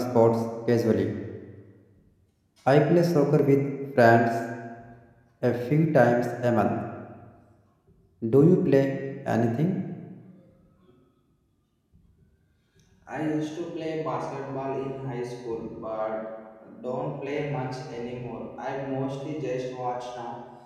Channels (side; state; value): both; identical; correlation 1.00